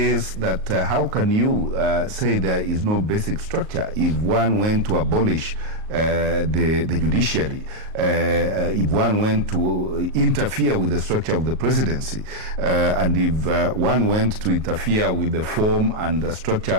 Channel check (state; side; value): late; left; 38 ms